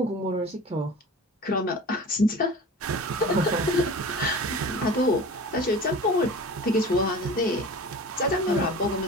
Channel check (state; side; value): normal; both; correlation 0.37